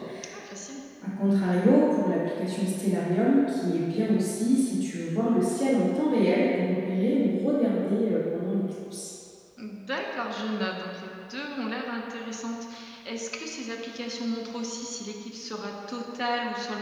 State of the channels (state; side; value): identical; both; correlation 1.00